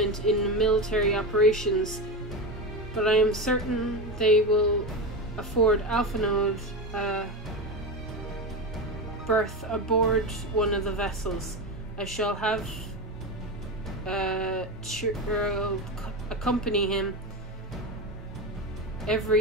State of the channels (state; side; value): normal; both; correlation 0.18